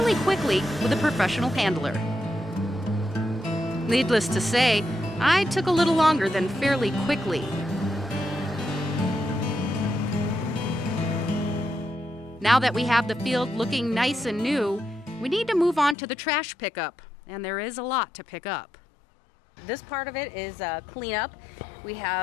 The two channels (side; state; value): right; drops out; at 16.0 s